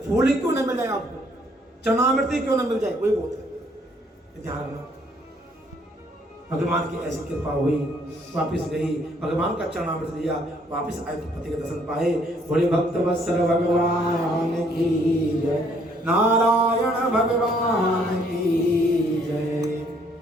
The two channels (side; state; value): both; normal; correlation 0.65